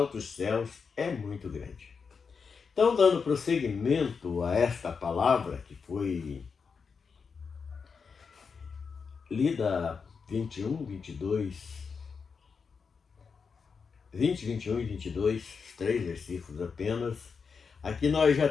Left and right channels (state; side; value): quieter; right; 5.6 dB